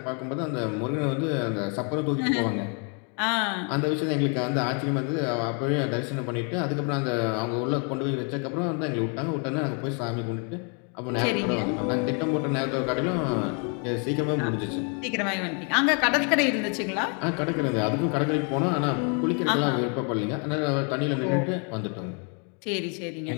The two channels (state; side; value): quieter; right; 37.9 dB